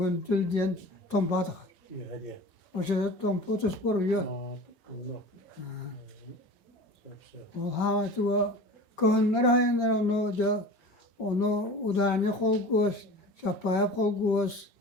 diyen tompa takar. İyi hadi. O şeyde tompa tuspor yiyor. Allah. O havası kıhınlar hayanlar onu udani kol göz, şapaya kol göz,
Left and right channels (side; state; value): both; normal; correlation 0.37